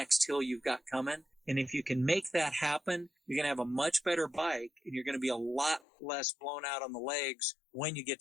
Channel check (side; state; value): right; drops out; at 5.8 s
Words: hill you've got coming. And if you can make that happen, you're going to have a much better bike and you're going to be a lot less blown out on the legs when you get